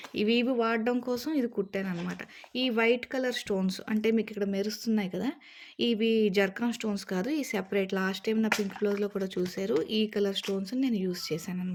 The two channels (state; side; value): identical; both; correlation 1.00